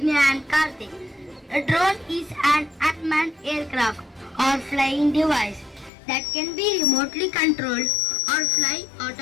and Karthik. A drone is an unmanned aircraft or flying device that can be remotely controlled or fly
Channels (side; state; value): right; drops out; at 5.9 s